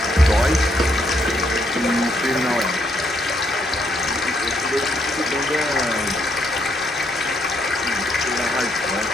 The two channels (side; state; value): both; normal; correlation 0.73